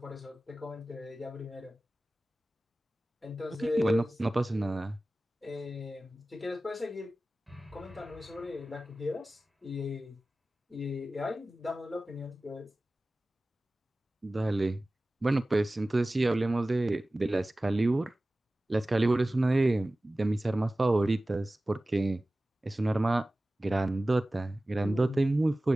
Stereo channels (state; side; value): normal; both; correlation 0.97